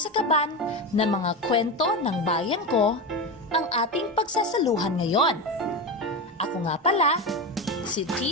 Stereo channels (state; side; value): normal; both; correlation 0.19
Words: kaban ng mga kwento ng bayan ko ang ating pagsasaluhan ngayon. Ako nga pala, si